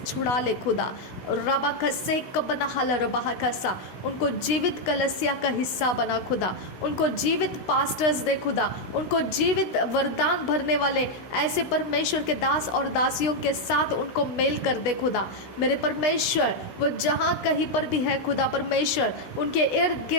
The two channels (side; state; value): right; late; 16 ms